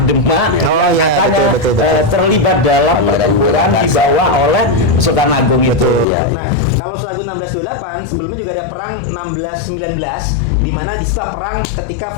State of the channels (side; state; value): right; drops out; at 6.1 s